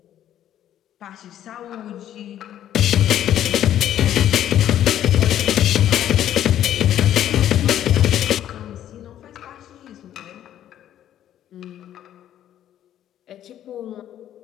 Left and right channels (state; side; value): quieter; right; 11.3 dB